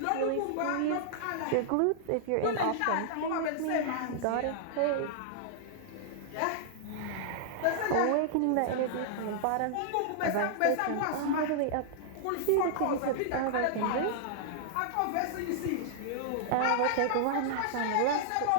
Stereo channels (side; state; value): both; different; correlation -0.01